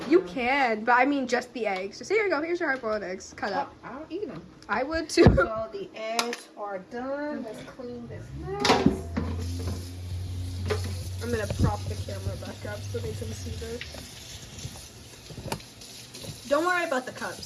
You now. can, but I mean just the eggs. Just here you go. Here's your hard-boiled eggs. Cut up. I'll eat them. I would too. So the eggs are done. Let's clean this mess. I'm gonna prop the camera back up so they can see this. Don't worry about the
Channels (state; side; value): identical; both; correlation 1.00